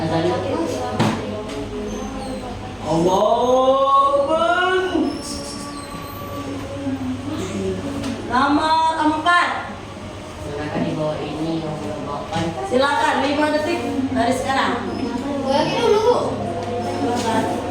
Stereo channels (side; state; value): both; identical; correlation 1.00